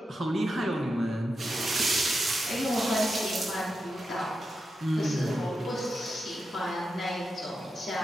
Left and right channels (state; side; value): normal; both; correlation 0.88